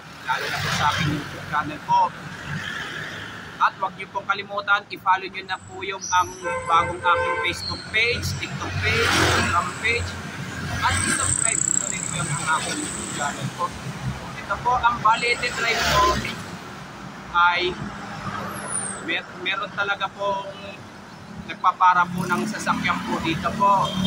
lalo na po sa aking YouTube channel po. At huwag niyo pong kalimutan, i-follow niyo na po yung ang bagong aking Facebook page, TikTok page, Instagram page, at i-subscribe po rin po yung aking YouTube channel po. Ito po, ang Balete Drive po ay meron talaga pong nagpapara po ng sasakyan po dito po.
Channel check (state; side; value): identical; both; correlation 1.00